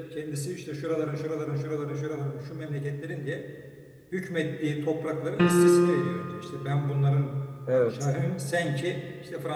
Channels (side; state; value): both; identical; correlation 1.00